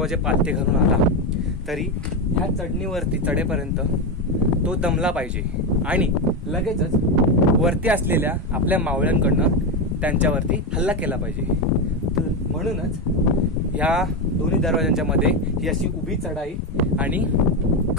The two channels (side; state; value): both; normal; correlation 0.11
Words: पालथे घालून आला तरी ह्या चढेपर्यंत तो दमला पाहिजे आणि लगेचच वरती असलेल्या आपल्या मावळ्यांकडनं त्यांच्यावरती हल्ला केला पाहिजे. म्हणूनच ह्या दोन्ही दरवाजांच्या मध्ये ही अशी उभी चढाई आणि